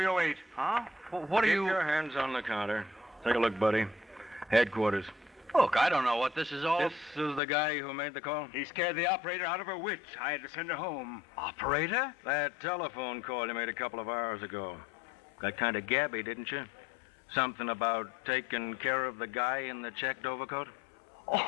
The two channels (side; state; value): right; drops out; at 7.4 s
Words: Huh? What are Keep you... your hands on the counter. Take a look, buddy. Headquarters. Look, I don't know what this is all... This is the guy who made the call? He scared the operator out of her wits. I had to send her home. Operator? That telephone call you made a couple of hours ago. Got kind of gabby, didn't you? Something about taking care of the guy in the checked overcoat?